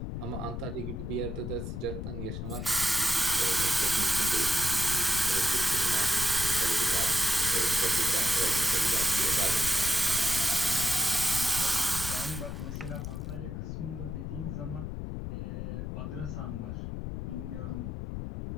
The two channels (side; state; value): left; noise; rumble, 5 dB below the sound